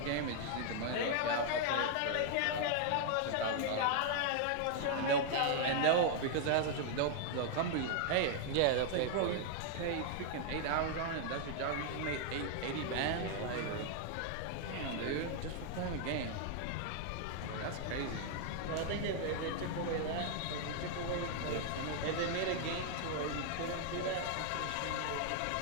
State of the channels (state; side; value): different; both; correlation 0.00